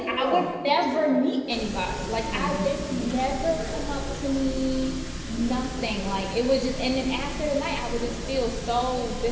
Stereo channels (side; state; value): both; identical; correlation 1.00